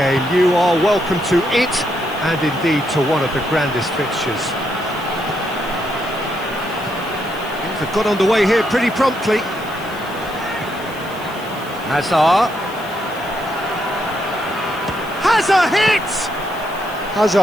You are welcome to it, and indeed to one of the grandest fixtures. Things have got underway here pretty promptly. Hazard. Hazard hits!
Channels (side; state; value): left; noise; hiss, 20 dB below the sound